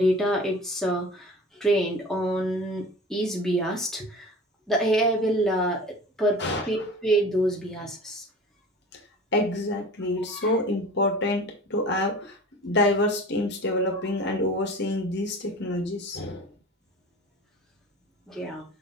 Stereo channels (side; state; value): both; normal; correlation 0.39